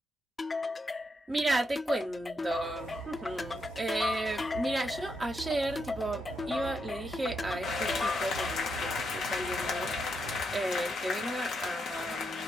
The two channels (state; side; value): normal; both; correlation 0.81